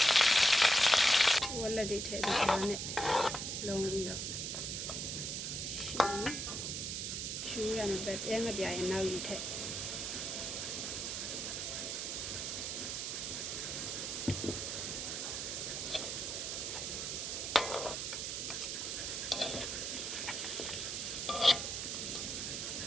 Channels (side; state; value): right; noise; hiss, 3 dB below the sound